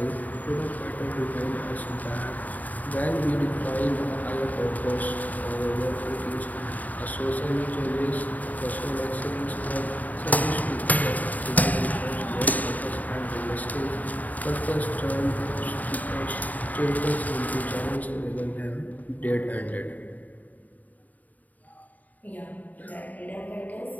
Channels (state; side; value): late; right; 0.077 ms